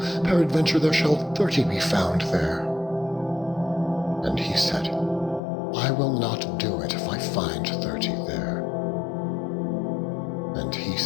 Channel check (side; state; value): right; drops out; at 5.4 s